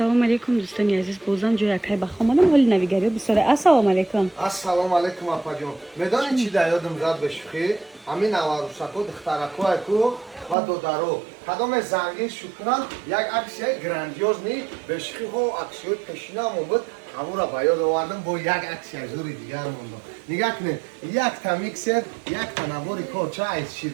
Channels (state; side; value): drops out; left; at 10.6 s